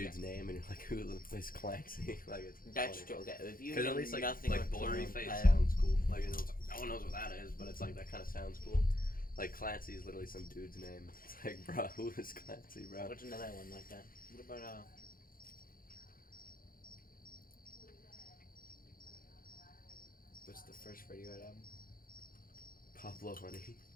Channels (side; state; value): right; late; 0.41 ms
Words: name, and you're like, who is Clancy? Like it's That's funny. true. Okay, if you Because know at least like nothing like about blurry Clone, face I- sounds cool. Like you know, it's like, no one knows what that is, but it's like that kind of sounds cool. Like Clancy is literally some dude's name. It's like, bro, who is Clancy, bro? What's another one like that? What about what's the first Radiohead album? Pablo Honey.